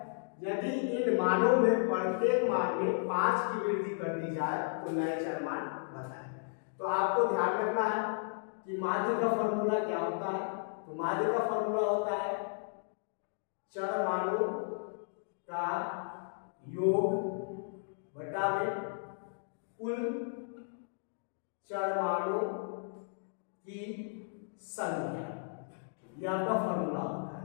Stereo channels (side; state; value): right; silent; digital silence